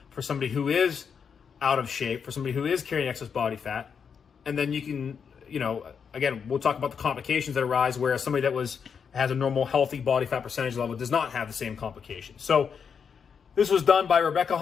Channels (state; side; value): quieter; right; 6.6 dB